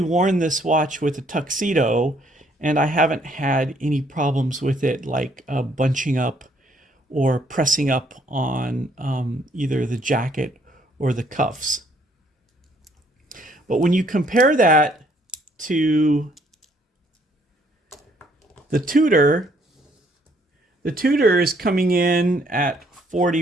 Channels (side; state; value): both; normal; correlation 0.66